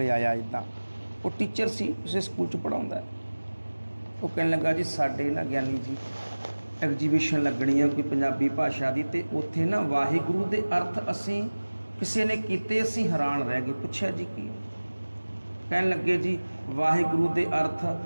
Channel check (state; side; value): inverted; both; correlation -1.00